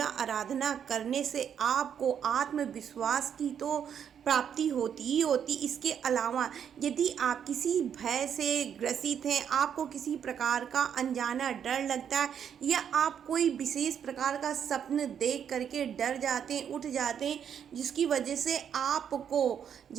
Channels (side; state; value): left; quieter; 8.4 dB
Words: आराधना करने से आपको आत्मविश्वास की तो प्राप्ति होती ही होती। इसके अलावा यदि आप किसी भय से ग्रसित हैं, आपको किसी प्रकार का अनजाना डर लगता है या आप कोई विशेष प्रकार का स्वप्न देख करके डर जाते हैं, उठ जाते हैं, जिसकी वजह से आपको